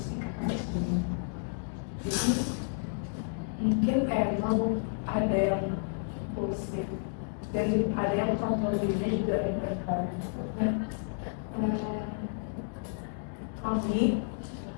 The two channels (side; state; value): right; silent; digital silence